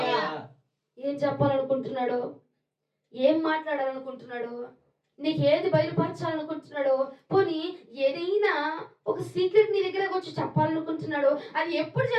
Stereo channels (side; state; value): both; identical; correlation 1.00